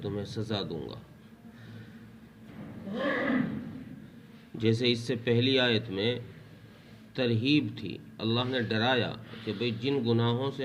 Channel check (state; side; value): identical; both; correlation 1.00